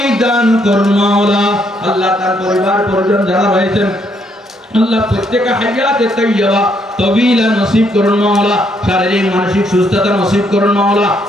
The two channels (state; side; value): normal; both; correlation 0.72